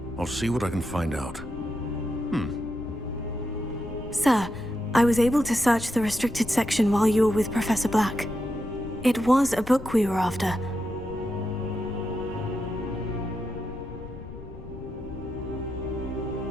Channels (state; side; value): noise; left; rumble, 13 dB below the sound